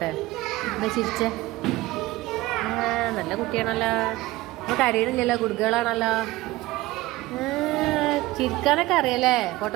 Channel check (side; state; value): left; quieter; 18.8 dB